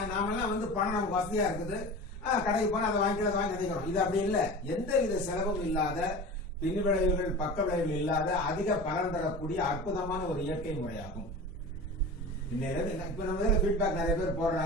நாமெல்லாம் பணம் நமக்கு வசதியா இருக்குது, கடைக்கு போனா அதை வாங்கி நினைக்கிறோம். இது அப்படி இல்லை. எந்த வித செலவும் இல்லாத, பின் விளைவுகள் பக்க விளைவுகள் இல்லாத, அதிக பலன் தரக்கூடிய அற்புதமான ஒரு இயற்கை முறையாகும். இப்ப நம்ம ஃபீட்பேக் நிறைய பேர்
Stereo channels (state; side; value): normal; both; correlation 0.34